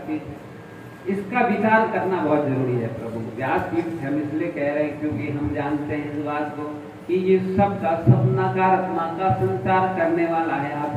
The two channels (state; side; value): identical; both; correlation 1.00